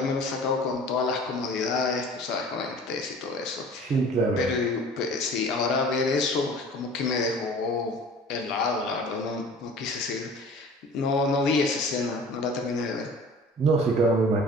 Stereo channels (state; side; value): normal; both; correlation 0.44